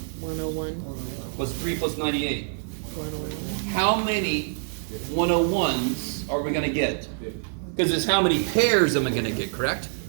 101. What's 3 plus 98? 101. How many 101s are we going to get? Because it's how many pairs am I going to get, correct?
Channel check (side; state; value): left; silent; 61 dB below the other